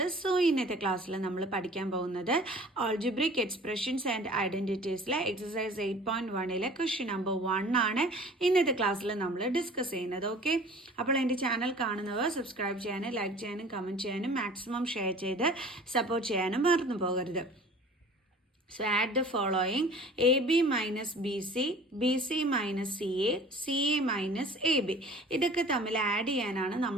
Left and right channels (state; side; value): normal; both; correlation 0.46